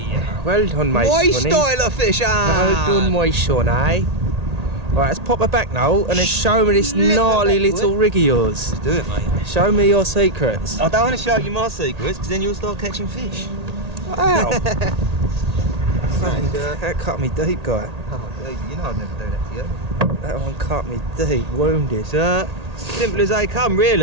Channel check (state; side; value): late; left; 1.8 ms